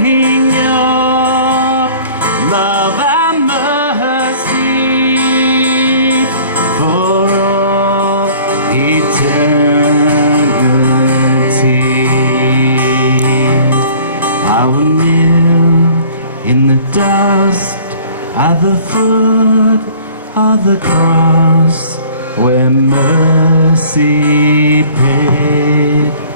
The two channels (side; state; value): both; inverted; correlation -0.51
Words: your love and mercy for all eternity. I will kneel in the dust at the foot of the cross where mercy paid